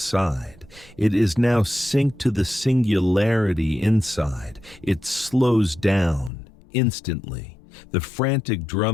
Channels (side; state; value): right; drops out; at 6.3 s